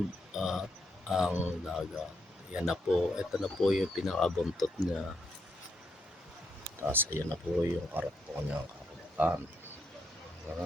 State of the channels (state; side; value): normal; both; correlation 0.78